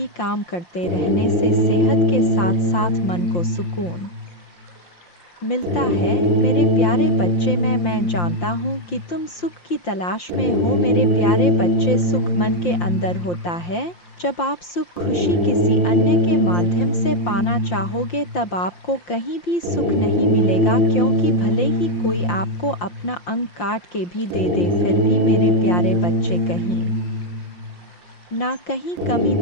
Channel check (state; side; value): late; right; 5.7 ms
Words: काम करते रहने से सेहत के साथ साथ मन को सुकून मिलता है। मेरे प्यारे बच्चे, मैं जानता हूँ कि तुम सुख की तलाश में हो। मेरे प्यारे बच्चे, सुख मन के अंदर होता है। जब आप सुख खुशी किसी अन्य के माध्यम से पाना चाहोगे, तब आपको कहीं भी सुख नहीं मिलेगा, क्योंकि भले ही कोई आपको अपना अंग काट के भी दे दे, फिर भी मेरे प्यारे बच्चे कहीं ना कहीं कमी